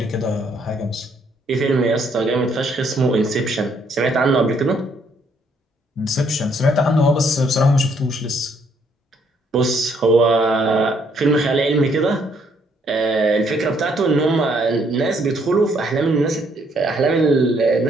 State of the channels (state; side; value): normal; both; correlation 0.68